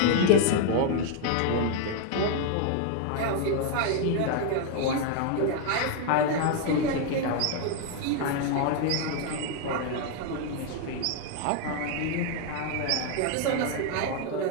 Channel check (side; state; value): both; different; correlation 0.00